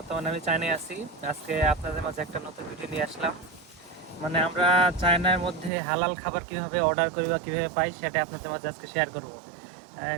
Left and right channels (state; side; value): drops out; left; at 5.7 s